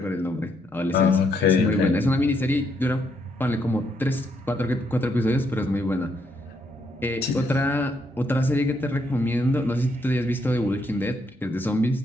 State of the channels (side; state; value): both; normal; correlation 0.74